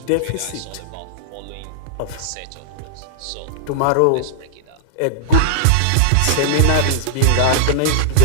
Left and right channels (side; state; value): both; different; correlation -0.02